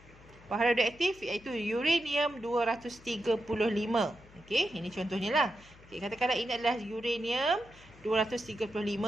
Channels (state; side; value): noise; left; hum, 23 dB below the sound